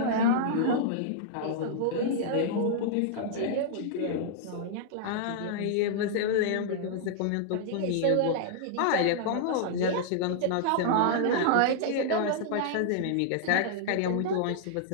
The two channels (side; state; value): both; different; correlation -0.01